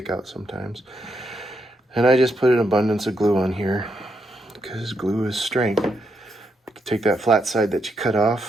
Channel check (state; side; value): normal; both; correlation 0.80